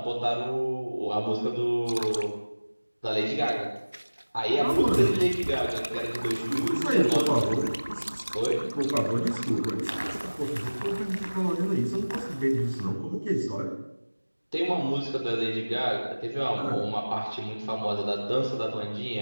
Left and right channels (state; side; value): inverted; both; correlation -1.00